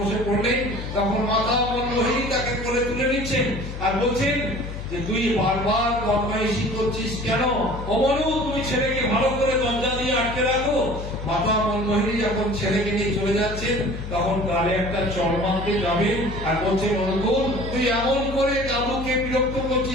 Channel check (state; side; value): noise; left; hum, 8 dB below the sound